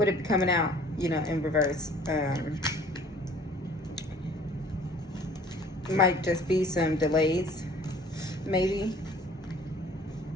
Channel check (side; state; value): both; normal; correlation 0.52